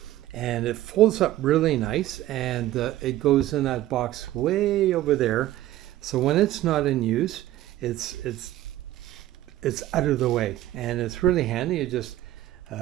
and it folds up really nice, and it goes in that box way over there. So when it's not in use, it's out of the way, and it's really handy. You just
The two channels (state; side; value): quieter; left; 14.6 dB